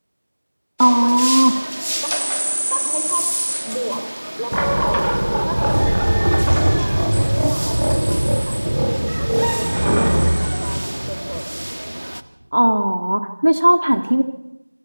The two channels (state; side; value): inverted; both; correlation -1.00